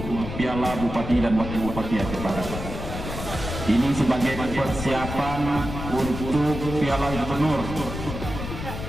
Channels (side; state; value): left; noise; rumble, 7 dB below the sound